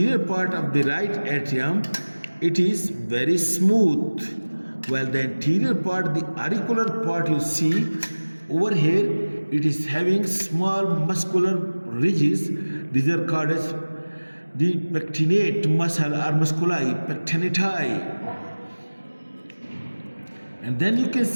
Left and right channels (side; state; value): both; inverted; correlation -1.00